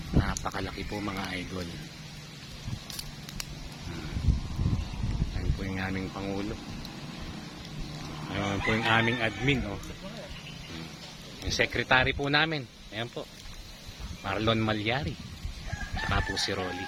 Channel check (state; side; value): identical; both; correlation 1.00